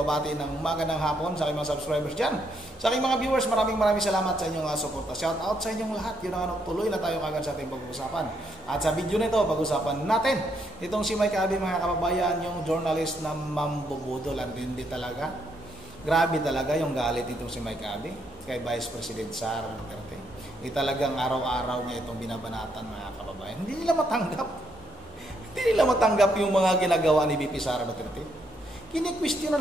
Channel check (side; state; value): both; normal; correlation 0.75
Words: ng magandang hapon sa aking mga subscribers dyan. Sa aking mga viewers, maraming salamat sa inyong suporta. Shout out sa inyong lahat. Yun ang tuloy na tayo kagad sa ating pag-usapan. At sa video nito, pag-usapan natin itong si Mike Abby, mga kababayan, yung journalist na mambubudol. Hindi talaga. Grabe talaga yung galit itong si Mike Abby kay Vice President Sara Duterte. Talagang araw-araw niya itong binabanatan, mga kababayan. Hindi nila matanggap yung mga ginagawa ni VP Sara Duterte. Kini-question na